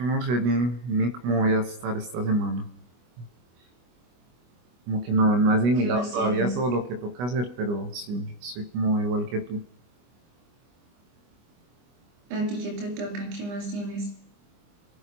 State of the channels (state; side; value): late; left; 24 ms